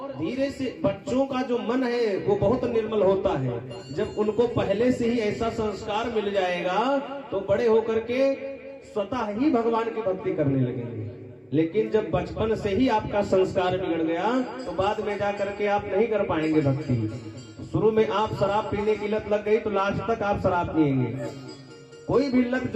धीरे से बच्चों का जो मन है वो बहुत निर्मल होता है। जब उनको पहले से ही ऐसा संस्कार मिल जाएगा तो बड़े होकर के स्वतः ही भगवान की भक्ति करने लगेंगे। लेकिन जब बचपन से ही आपका संस्कार बिगड़ गया तो बाद में जा करके आप नहीं कर पाएंगे भक्ति। शुरू में आप शराब पीने की लत लग गई तो लास्ट तक आप शराब पिएंगे। कोई भी लत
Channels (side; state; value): both; identical; correlation 1.00